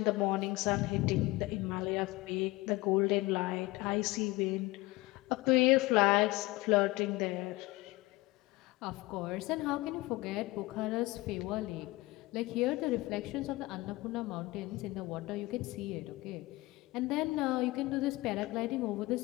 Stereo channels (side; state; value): right; quieter; 20.7 dB